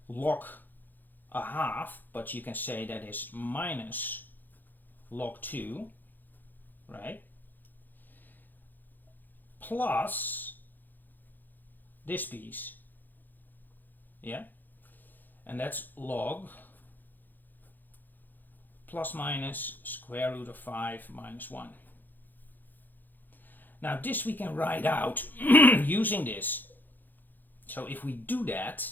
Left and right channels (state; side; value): late; right; 0.087 ms